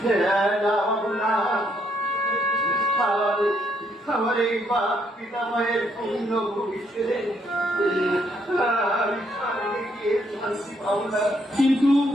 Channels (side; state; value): both; normal; correlation 0.72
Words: আমার এই বাপ পিতামহের পূর্ণ ভবিষ্যতে আমি স্বর্গে গিয়ে শান্তি পাবো না। কিন্তু